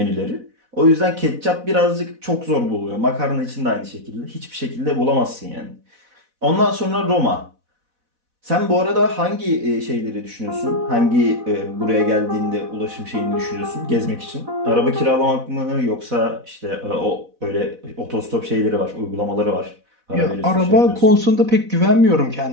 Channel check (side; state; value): left; late; 4.1 ms